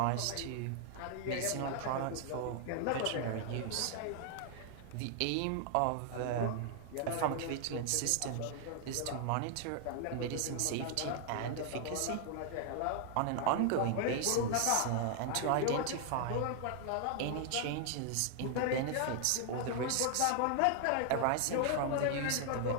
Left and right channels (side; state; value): both; different; correlation 0.00